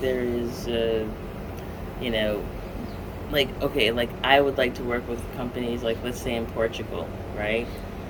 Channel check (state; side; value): identical; both; correlation 1.00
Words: is, you know, like, okay, like I would like to work with companies, like, let's say in Portugal, right?